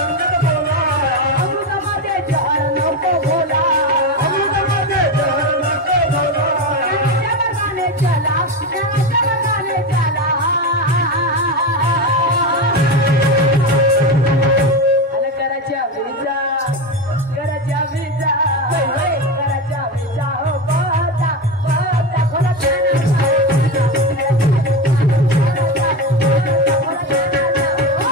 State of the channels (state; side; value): normal; both; correlation 0.18